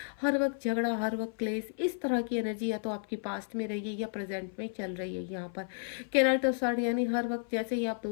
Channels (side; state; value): right; silent; 55 dB below the other